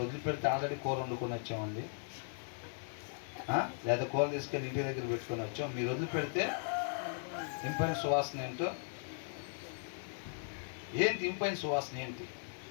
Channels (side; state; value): right; silent; 53 dB below the other